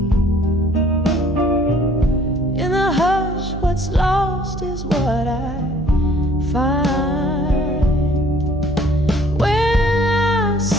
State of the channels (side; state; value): right; noise; hum, 8 dB below the sound